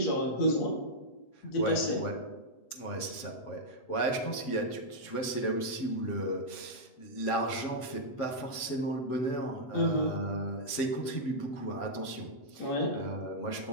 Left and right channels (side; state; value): right; late; 8.0 ms